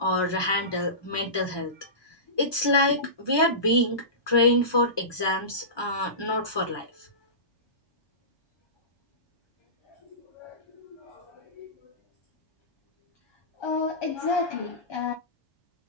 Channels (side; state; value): right; late; 1.2 ms